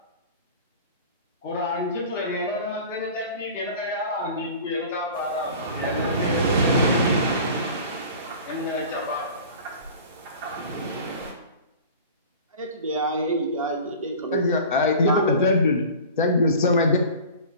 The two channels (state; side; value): inverted; both; correlation -0.40